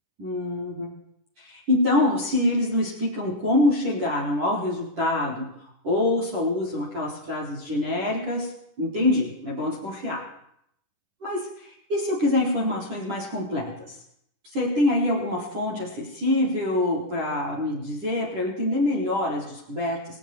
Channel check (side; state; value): left; late; 10 ms